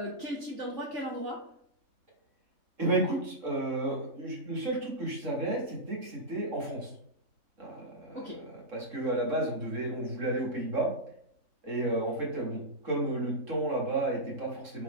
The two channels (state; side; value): late; left; 3.7 ms